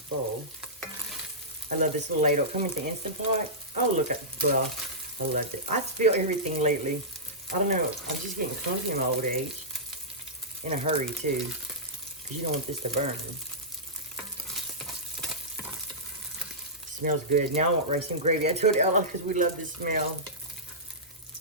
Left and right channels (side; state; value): both; normal; correlation -0.16